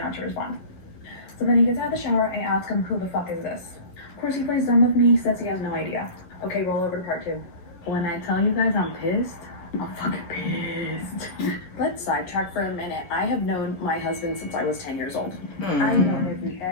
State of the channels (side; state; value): right; late; 11 ms